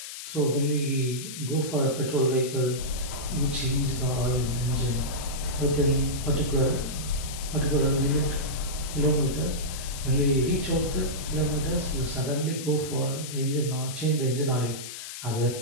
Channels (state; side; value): noise; left; hiss, 10 dB below the sound